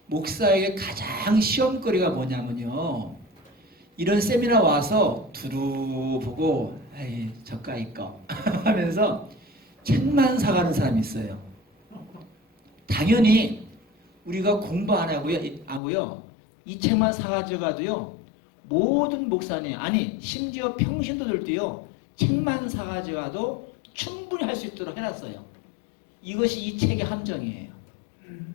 목사에게 가장 시험거리가 뭐냐면요. 이런 세미나 와서 두루 보고 에이 저까이 거 하면서 책만 사가는 사람이 있어요. 당연히 우리가 공부 안 하고요. 이 책만 사가지고 가도요. 모든 목사님 아니 심지어 평신도들도요. 책만 사가지고 가도 충분히 할 수 있도록 해놨어요. 이것이 이 책의 함정이에요.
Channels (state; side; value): drops out; right; at 15.8 s